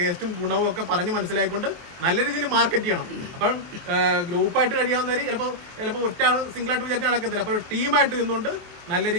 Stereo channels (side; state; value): left; late; 23 ms